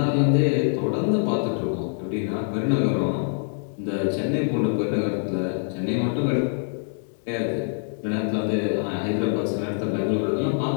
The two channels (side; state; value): right; silent; 62 dB below the other